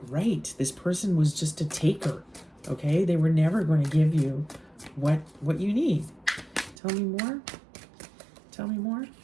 right. This person was just a taker, okay? They were never going to give you what you need. Tell me more. Tell me more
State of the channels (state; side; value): drops out; left; at 6.8 s